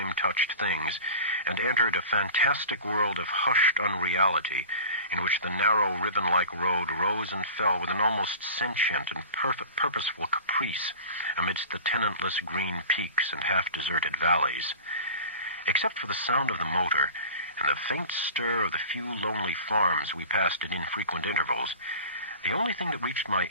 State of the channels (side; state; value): both; inverted; correlation -0.38